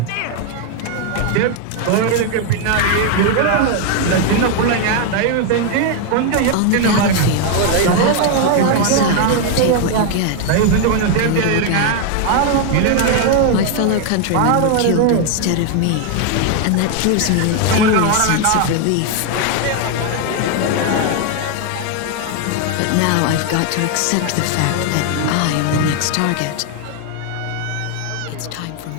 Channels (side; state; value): both; different; correlation 0.00